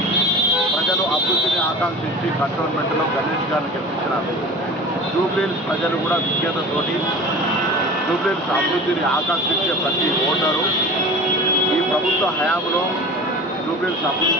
ప్రజలు అభివృద్ధిని ఆకాంక్షించి కంటోన్మెంట్లో గణేష్ గారిని గెలిపించినారు. జూబ్లీహిల్స్ ప్రజలు కూడా విజ్ఞతతోటి జూబ్లీహిల్స్ అభివృద్ధిని ఆకాంక్షించే ప్రతి ఓటరు ఈ ప్రభుత్వ హయాంలో జూబ్లీహిల్స్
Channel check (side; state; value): both; normal; correlation 0.37